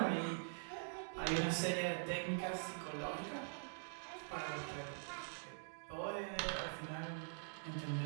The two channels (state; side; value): silent; left; digital silence